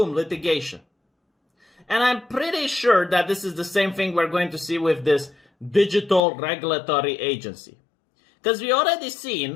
litigation. And I'm pretty sure that this is the same thing we're going to see with this digital regulatory agency. Because we already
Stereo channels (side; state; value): right; drops out; at 6.2 s